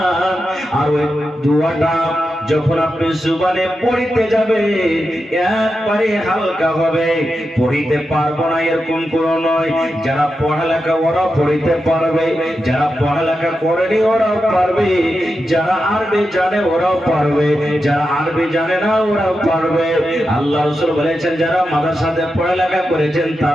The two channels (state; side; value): normal; both; correlation 0.89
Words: আর ওই দোয়াটা যখন আপনি জুবানে পড়িতে যাবে একবারে হালকা হবে। পড়িতে পারবো না এরকম কোনো নয়, যারা পড়ালেখা ওরা পড়িতে পারবে, যারা পড়ালেখা করেনি ওরাও পারবে, যারা আরবি জানে ওরাও পারবে, যারা আরবি জানে না ওরাও পারবে। আল্লাহ রাসূল বলেছেন যারা মাদ্রাসাতে পড়ালেখা করেছেন